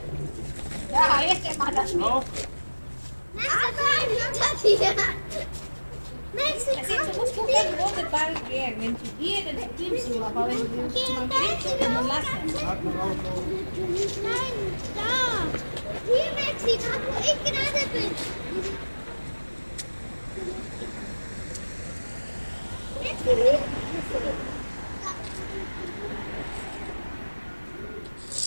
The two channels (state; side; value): inverted; both; correlation -1.00